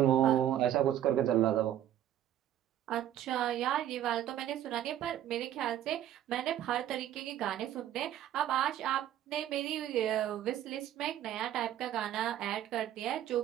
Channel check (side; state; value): left; quieter; 11.6 dB